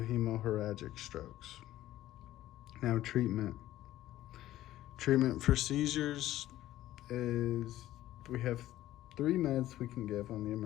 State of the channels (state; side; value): quieter; right; 14.4 dB